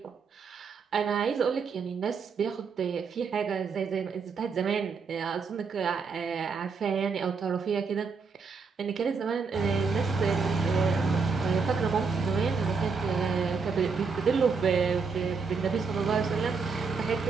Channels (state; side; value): quieter; left; 5.1 dB